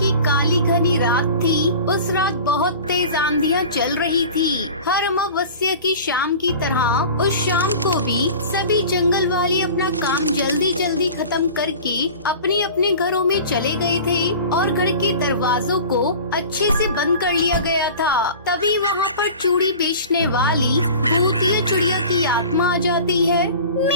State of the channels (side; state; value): both; inverted; correlation -0.39